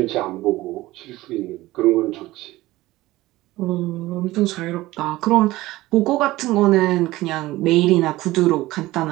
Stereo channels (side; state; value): left; quieter; 17.9 dB